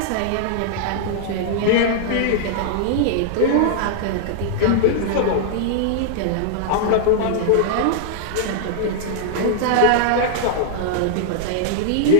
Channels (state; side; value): different; both; correlation -0.01